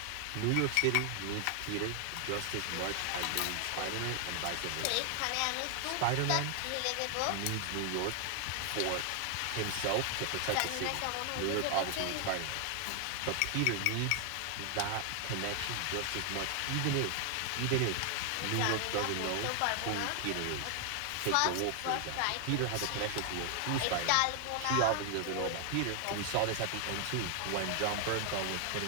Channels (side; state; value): both; different; correlation 0.00